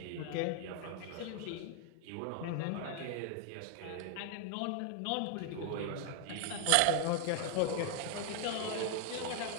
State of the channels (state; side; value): different; both; correlation 0.00